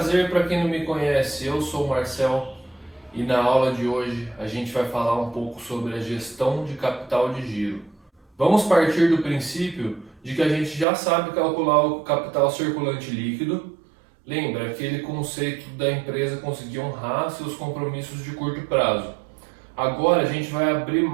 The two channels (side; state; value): left; drops out; at 10.9 s